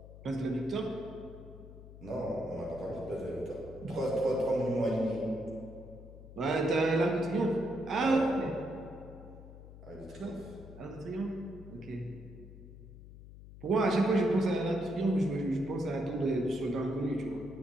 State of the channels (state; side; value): noise; left; hum, 16 dB below the sound